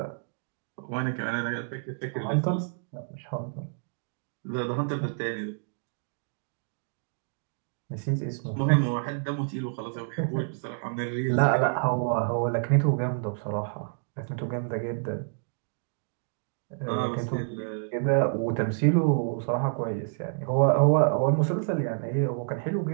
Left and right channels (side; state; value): left; silent; digital silence